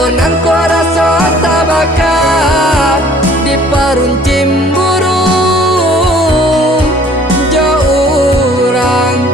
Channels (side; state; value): both; normal; correlation 0.55